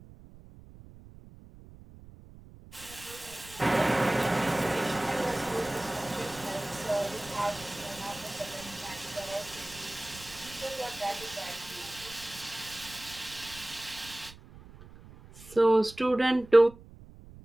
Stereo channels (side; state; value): right; noise; rumble, 19 dB below the sound